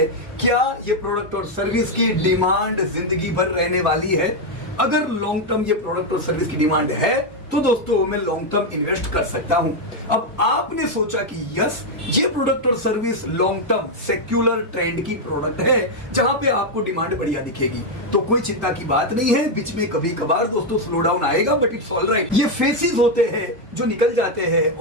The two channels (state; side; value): normal; both; correlation 0.02